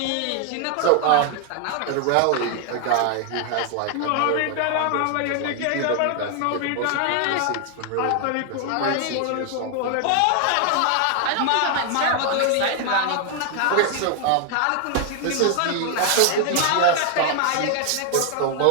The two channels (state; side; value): different; both; correlation 0.00